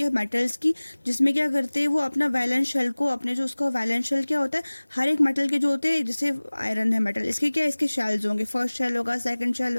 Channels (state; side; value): inverted; both; correlation -1.00